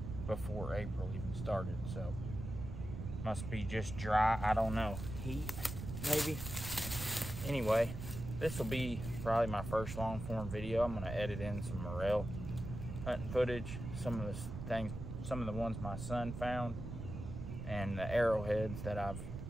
before April even started, so must be just dry, I don't know, heat maybe. Anyway, this will be probably my first long form video. I'm gonna edit in some morel hunting footage, some of the ones my son found, and the arrowheads that I've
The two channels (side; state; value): right; noise; rumble, 7 dB below the sound